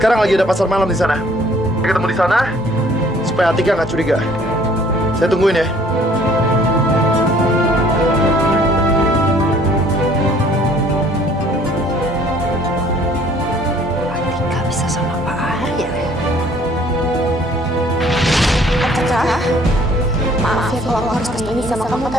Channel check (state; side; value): normal; both; correlation 0.57